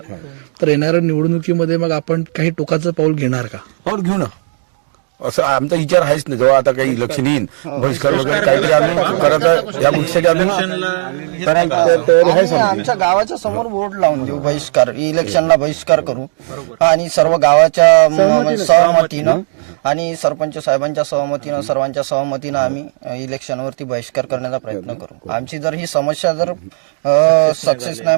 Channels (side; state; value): left; silent; digital silence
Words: तर येणाऱ्या निवडणुकीमध्ये मग आपण काही टोकाचं पाऊल घेणार का? पाऊल घेऊ ना, असं आमचा विचार आहेच नाही. जेव्हा आता काही इलेक्शन येईल, बहिष्कार वगैरे काहीतरी आम्ही करत या गोष्टीसाठी आमच्या गावाच्या समोर बोर्ड लावून देऊ, बहिष्कार, इलेक्शनला बहिष्कार करू. आणि सर्व गावाच्या सहमतीनं आणि सरपंच साहेबांच्या सहमतीनं, सर्वांच्या सहमतीनं आम्ही इलेक्शनवरती बहिष्कार करण्याचा प्रयत्न करू. आमची जर ही समस्या जर सक्सेस नाही,